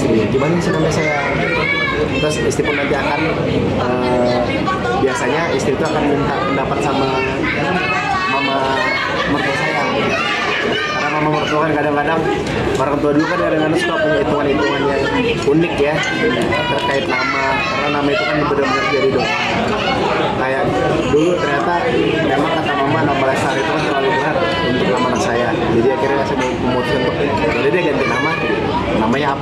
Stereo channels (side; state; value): both; identical; correlation 1.00